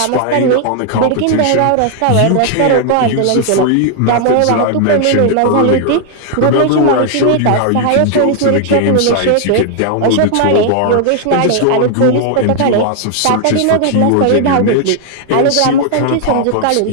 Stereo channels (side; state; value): both; different; correlation 0.00